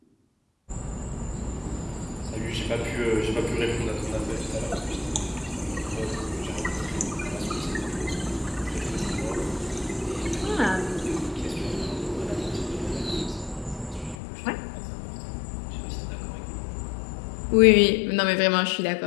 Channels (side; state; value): right; drops out; at 14.2 s